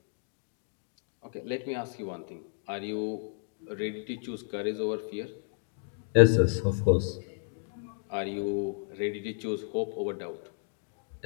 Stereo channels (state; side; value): silent; right; 56 dB below the other